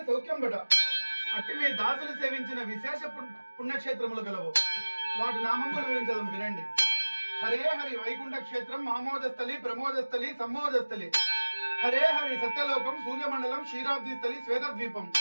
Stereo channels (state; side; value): inverted; both; correlation -1.00